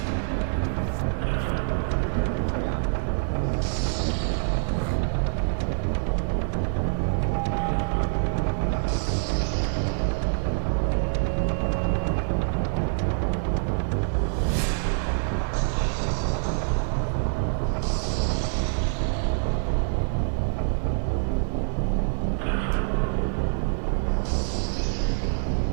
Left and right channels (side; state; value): left; silent; digital silence